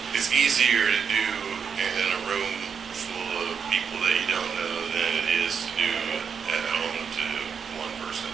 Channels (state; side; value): quieter; left; 6.6 dB